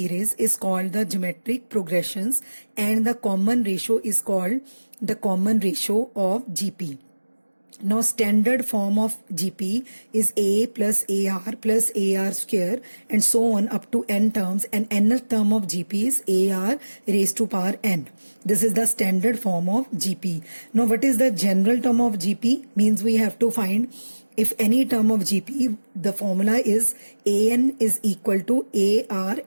is called the geometric progressions, and the common ratio is called the common ratio of GP. Now, standard form of GP is A plus AR plus AR square and so on up to n terms, and nth term of GP is AR raised to power n. This is the standard form of GP. Now, what is the general term of GP? Means we have to find if any term of GP, the formula is AN is equal to AR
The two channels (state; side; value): inverted; both; correlation -1.00